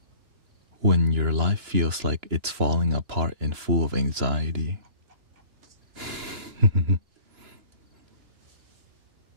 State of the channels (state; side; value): late; left; 2.9 ms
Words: when your life feels like it's falling apart and full of anxiety?